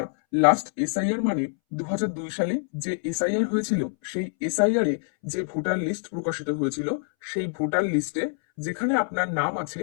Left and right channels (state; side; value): silent; right; 61 dB below the other